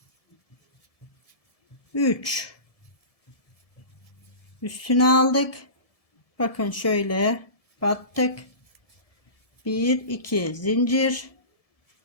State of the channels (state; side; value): late; right; 1.7 ms